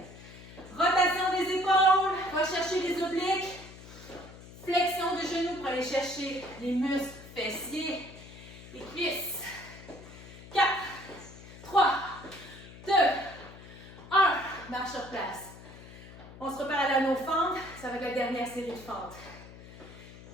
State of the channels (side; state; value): left; noise; hum, 17 dB below the sound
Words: Rotation des épaules. On va chercher les obliques. Flexion de genoux pour aller chercher les muscles fessiers et cuisses. 4, 3, 2, 1. Marche sur place. On se prépare à nos fentes. Ça va être la dernière série de fentes.